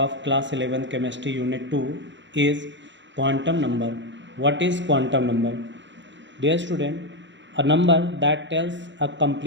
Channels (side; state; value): left; late; 0.53 ms